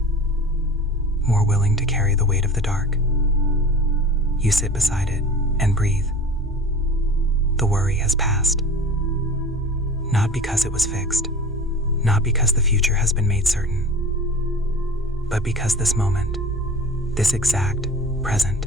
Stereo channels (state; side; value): normal; both; correlation 0.38